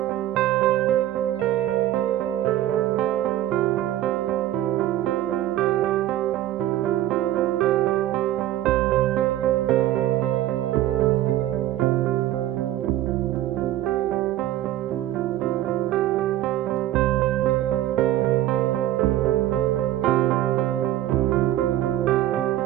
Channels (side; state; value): left; quieter; 13.7 dB